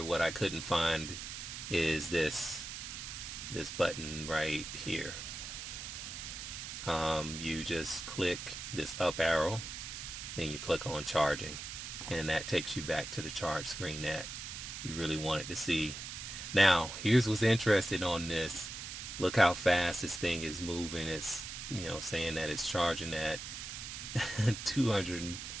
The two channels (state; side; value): noise; right; hiss, 8 dB below the sound